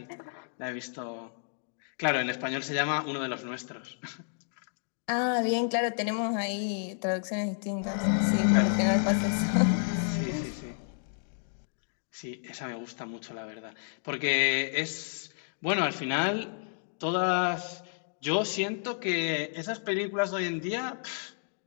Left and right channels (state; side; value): silent; right; digital silence